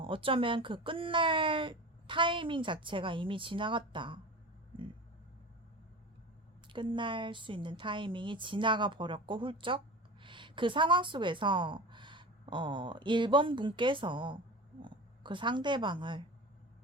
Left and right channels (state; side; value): normal; both; correlation 0.32